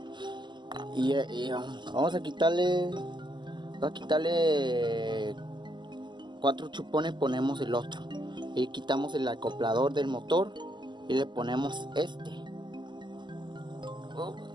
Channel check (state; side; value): late; left; 0.22 ms